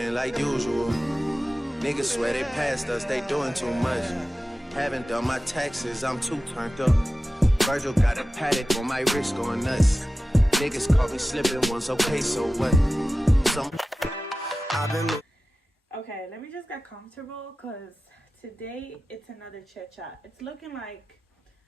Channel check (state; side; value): normal; both; correlation 0.94